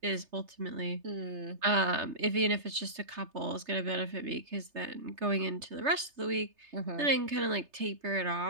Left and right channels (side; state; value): left; late; 3.3 ms